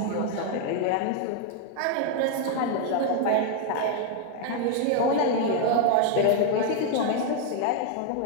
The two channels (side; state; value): both; different; correlation 0.00